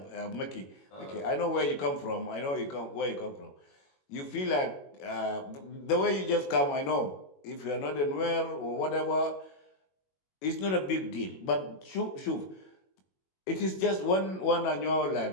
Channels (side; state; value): right; late; 21 ms